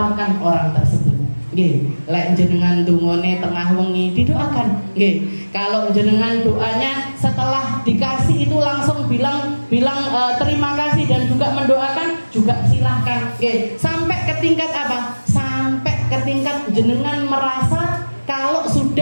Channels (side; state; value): both; inverted; correlation -1.00